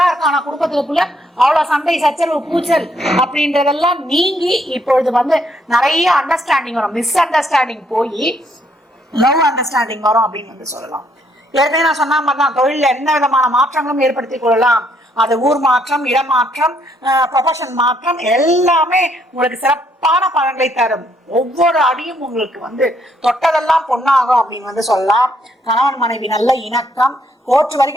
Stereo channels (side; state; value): both; normal; correlation 0.71